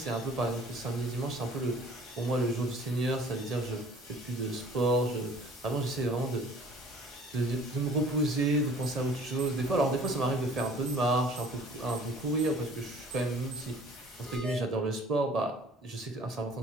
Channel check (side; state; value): both; normal; correlation 0.51